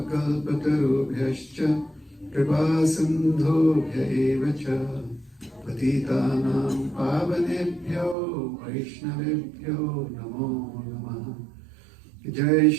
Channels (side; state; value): left; drops out; at 8.2 s